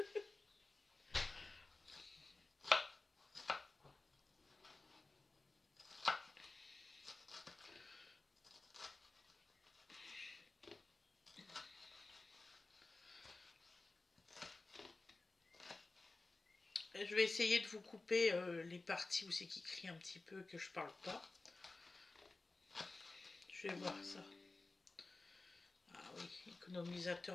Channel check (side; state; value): right; quieter; 3.3 dB